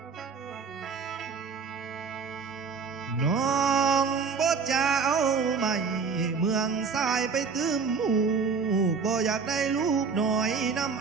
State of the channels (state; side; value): quieter; left; 5.4 dB